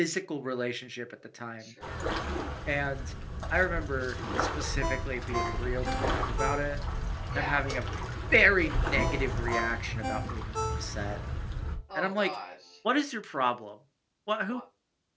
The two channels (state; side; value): identical; both; correlation 1.00